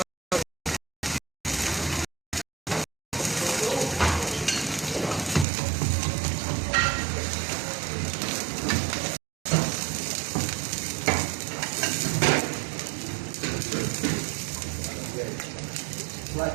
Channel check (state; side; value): drops out; left; at 5.5 s